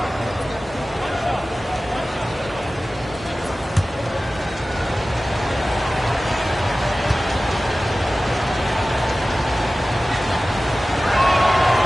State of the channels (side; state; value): both; normal; correlation 0.96